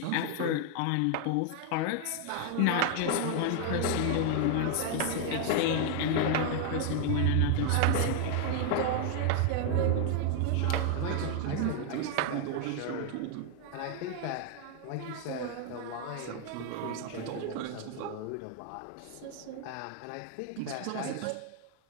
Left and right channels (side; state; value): both; different; correlation 0.00